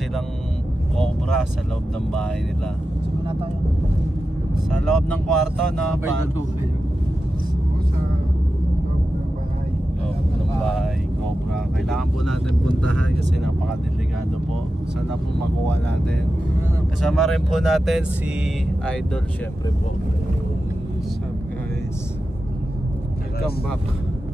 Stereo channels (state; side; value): normal; both; correlation 0.92